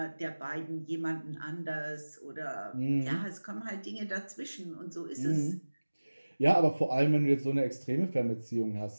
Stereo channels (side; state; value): both; inverted; correlation -1.00